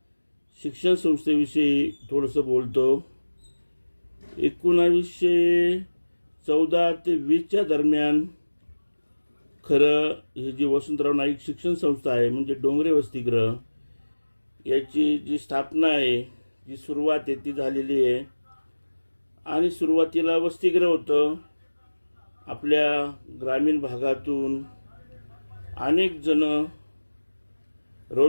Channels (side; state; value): both; inverted; correlation -1.00